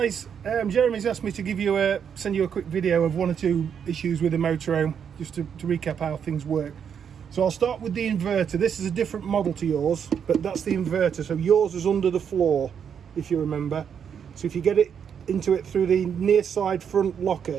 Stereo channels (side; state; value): left; quieter; 7.7 dB